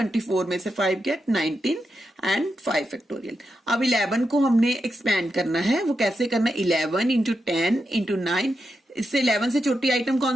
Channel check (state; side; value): normal; both; correlation 0.87